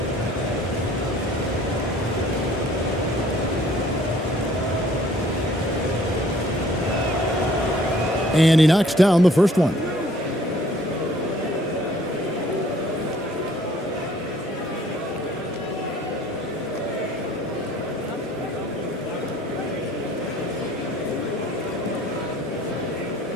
And he knocks down the first one.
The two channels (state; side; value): normal; both; correlation 0.56